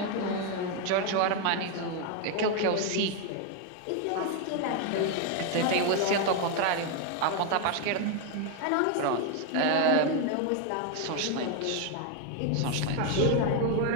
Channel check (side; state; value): both; different; correlation 0.01